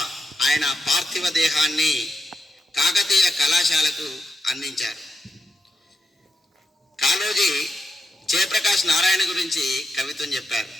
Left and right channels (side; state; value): both; normal; correlation 0.85